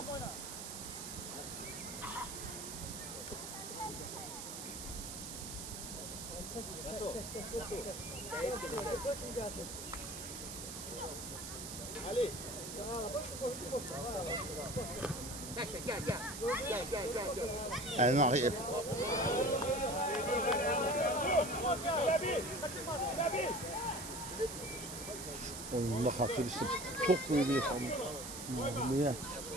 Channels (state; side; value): noise; right; hiss, 8 dB below the sound